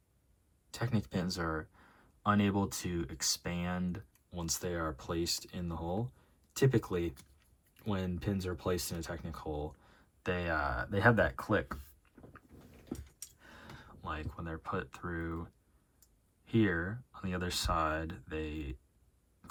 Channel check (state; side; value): identical; both; correlation 1.00